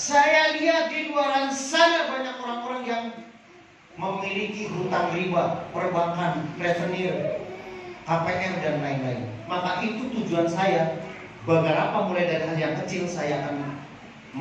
lihat di luar sana banyak orang-orang yang memiliki hutang riba, perbankan, revenue, KPR dan lain-lain. Maka itu tujuan saya. Beberapa mulai dari hal yang kecil saya akan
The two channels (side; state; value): both; identical; correlation 1.00